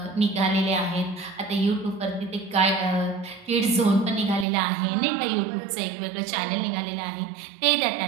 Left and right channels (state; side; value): drops out; left; at 4.5 s